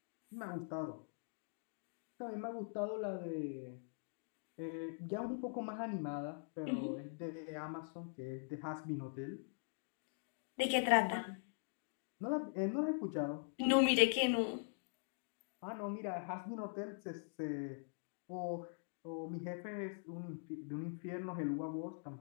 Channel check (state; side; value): silent; right; digital silence